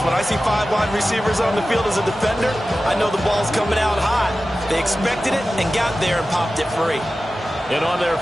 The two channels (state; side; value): normal; both; correlation 0.95